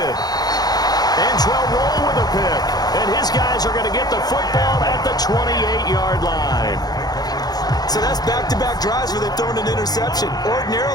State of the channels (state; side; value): late; right; 0.19 ms